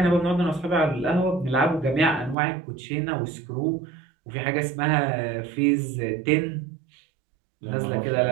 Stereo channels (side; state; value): left; drops out; at 2.4 s